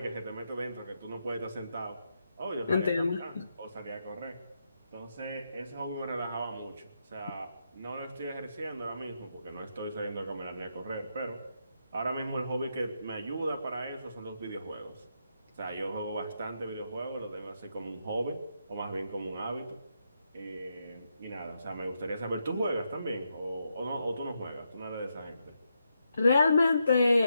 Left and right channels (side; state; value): both; inverted; correlation -0.82